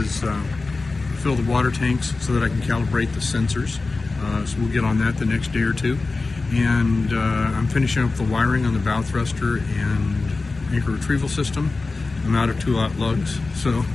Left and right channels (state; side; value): quieter; right; 3.7 dB